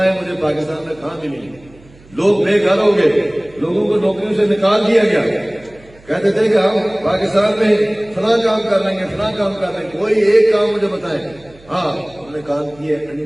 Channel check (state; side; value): noise; right; hum, 26 dB below the sound